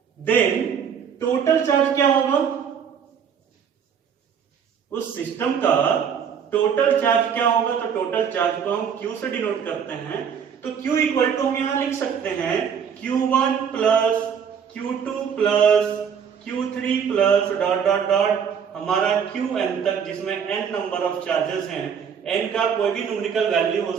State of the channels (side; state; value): left; quieter; 7.4 dB